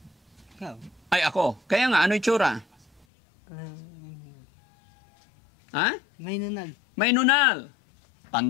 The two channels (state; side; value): drops out; right; at 3.1 s